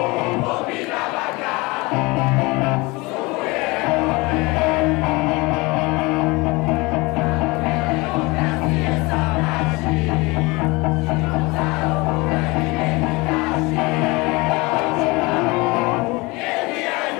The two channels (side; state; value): right; quieter; 24.6 dB